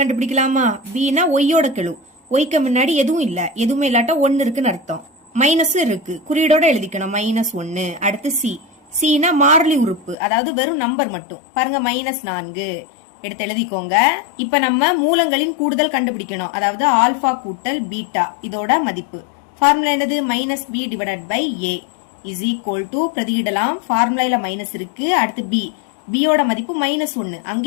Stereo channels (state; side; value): drops out; right; at 10.2 s